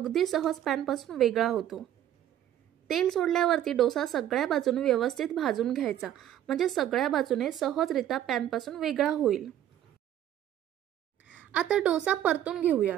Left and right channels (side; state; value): left; quieter; 11.4 dB